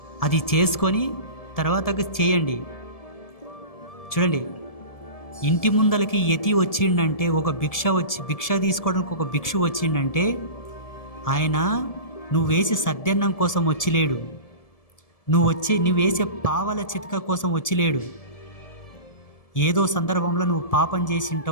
అది చేసుకొని తర్వాతకి చేయండి. చూడండి, ఇంటి ముందలకి యతి వచ్చిండంటే, ఒక భిక్ష తీసుకోవడానికి ఒక భిక్షు వచ్చిండంటే, ఆయన నువ్వు వేసే సద్దన్నం కోసం వచ్చిలేడు, నువ్వు వేసే పావల చితక కోసం వచ్చిలేడు. ఏదో సందర్భంలో నువ్వు పాపం చేసి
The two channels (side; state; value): right; late; 1.7 ms